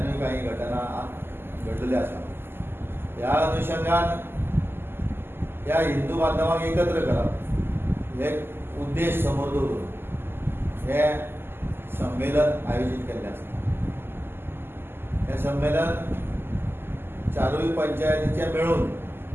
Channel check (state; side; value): late; left; 0.11 ms